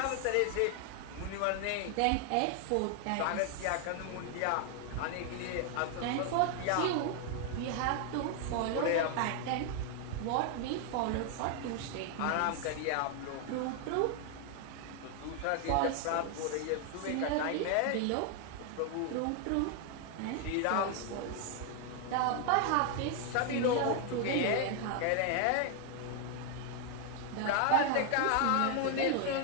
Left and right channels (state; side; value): different; both; correlation 0.00